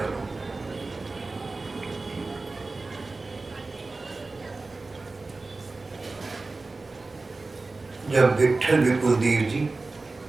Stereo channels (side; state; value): left; quieter; 3.5 dB